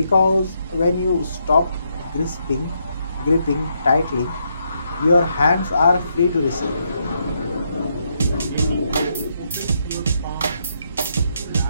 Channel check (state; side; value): inverted; both; correlation -0.77